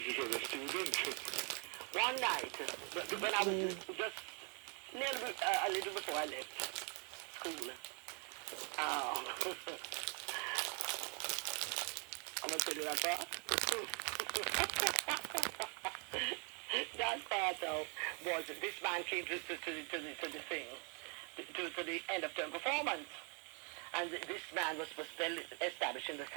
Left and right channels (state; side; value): quieter; left; 36.7 dB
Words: is a student. One night, when I was just a little before I left school, I'm going to tell you that part. That part, though, was this man came to the thing, to the end of term performance. And this man was well established in the